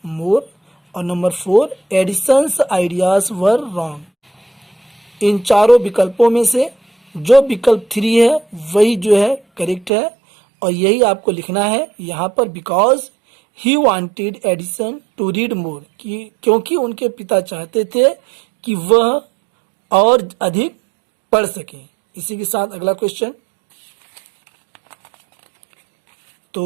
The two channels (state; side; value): drops out; left; at 9.9 s